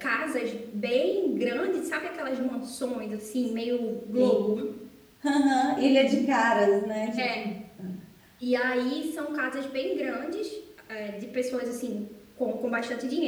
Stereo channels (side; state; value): both; identical; correlation 1.00